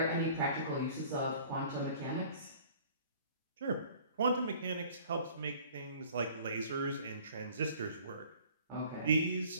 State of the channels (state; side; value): inverted; both; correlation -0.51